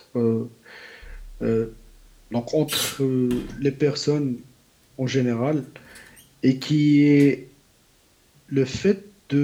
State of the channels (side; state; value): both; identical; correlation 1.00